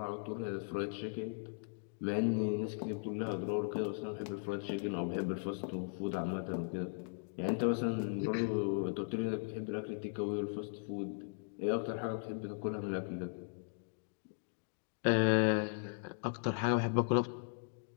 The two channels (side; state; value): right; silent; digital silence